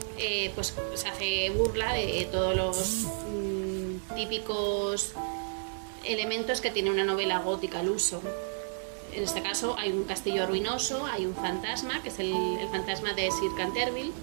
pues se hace burla de todos los típicos elementos que tiene una novela gótica al uso. En este caso hay un castillo ruinoso, hay un fantasma, que es el fantasma de Sir Canterville,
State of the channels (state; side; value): silent; left; digital silence